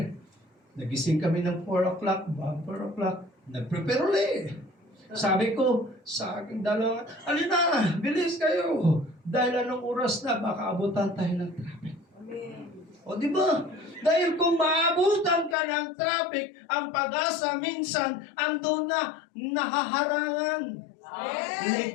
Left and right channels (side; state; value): right; drops out; at 15.6 s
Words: Nagising kami ng 4 o'clock, bago 4 o'clock, nag-prepare ulit. Sabi ko sa aking dalawa, alina, bilis kayo. Dahil anong oras na, baka abutan tayo ng traffic. O di ba? Dahil kung maabutan ka ng traffic, ang pag-asa minsan andun na nahaharangan.